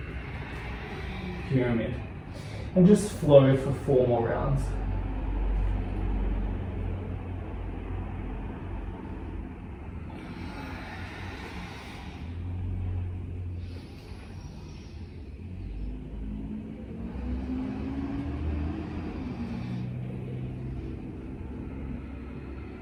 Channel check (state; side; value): identical; both; correlation 1.00